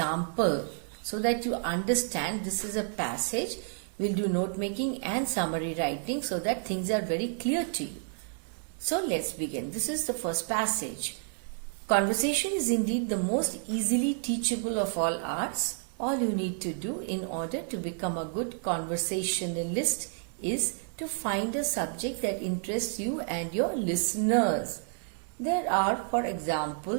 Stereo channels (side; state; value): left; silent; 58 dB below the other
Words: so that you understand this is a passage. We'll do note making and summary writing so that things are very clear to you. So, let's begin. This is the first passage. Conversation is indeed the most easily teachable of all arts. All you need to do in order to become a good conversationalist is to find a subject that interests you and your listeners. There are, for